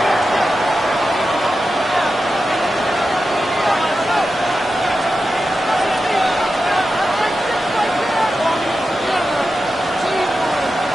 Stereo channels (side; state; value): both; normal; correlation 0.91